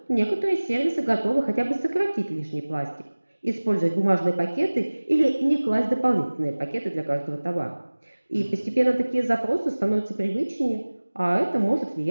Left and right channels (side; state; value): both; inverted; correlation -1.00